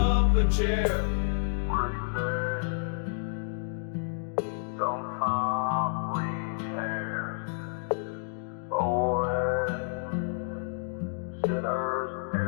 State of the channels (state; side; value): silent; right; digital silence